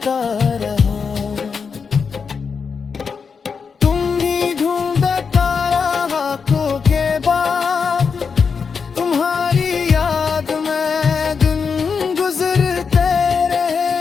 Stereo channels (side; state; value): right; quieter; 5.7 dB